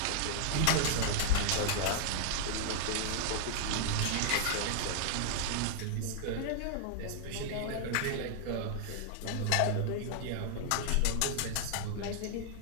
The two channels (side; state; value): both; different; correlation -0.01